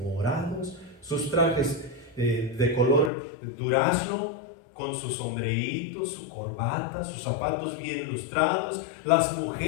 sus trajes de color durazno, con sus sombreitos, su corbata, sus zapatos bien lustrados, las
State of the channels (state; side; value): drops out; right; at 3.1 s